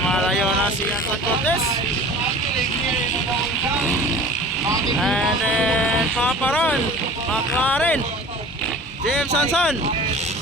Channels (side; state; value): both; normal; correlation 0.42